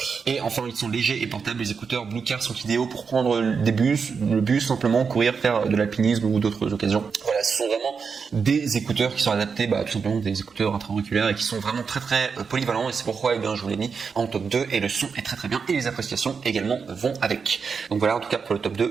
Et enfin, ils sont légers et portables. Les écouteurs Bluecare sont idéaux pour prendre le bus, simplement courir, faire de l'alpinisme ou d'autres occasions. Voilà, ce sont vraiment des écouteurs qui sont adaptés, tout simplement des écouteurs intra-auriculaires et qui sont vraiment très très polyvalents, et c'est pourquoi je vous l'ai mis en top 2, et le son est très très bien et les appréciations également vont avec. Donc voilà, en tout cas pour le top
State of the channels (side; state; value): left; quieter; 5.7 dB